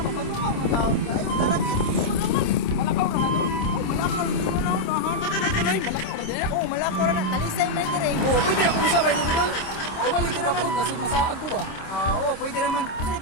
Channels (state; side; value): late; right; 26 ms